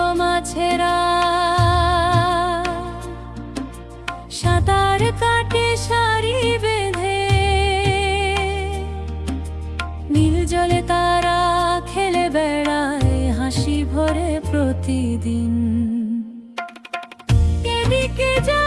মাছেরা সাঁতার কাটে সারি বেঁধে, নীল জলে তারা খেলে বেড়ায় হাসি ভরে প্রতিদিন। এদিকে যা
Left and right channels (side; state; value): both; identical; correlation 1.00